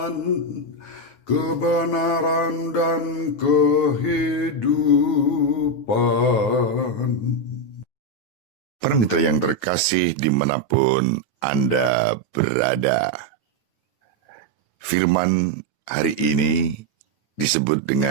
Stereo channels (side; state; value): right; late; 9.2 ms